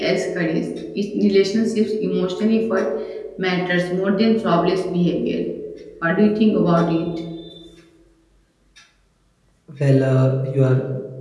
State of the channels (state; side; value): identical; both; correlation 1.00